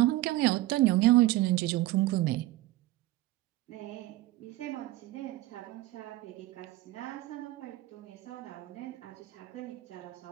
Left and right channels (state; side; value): quieter; left; 17.0 dB